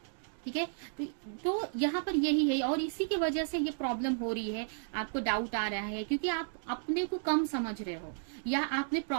ठीक है, तो यहाँ पर यही है, और इसी की वजह से ये प्रॉब्लम हो रही है, आपको डाउट आ रहा है, क्योंकि आप अपने को कम समझ रहे हो, या आपने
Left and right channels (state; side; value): silent; left; digital silence